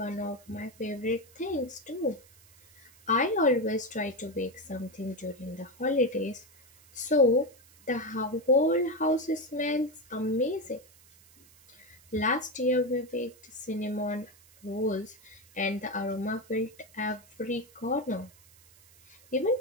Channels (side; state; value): right; noise; hiss, 26 dB below the sound